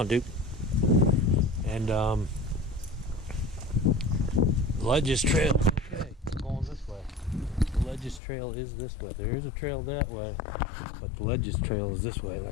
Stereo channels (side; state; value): right; drops out; at 8.2 s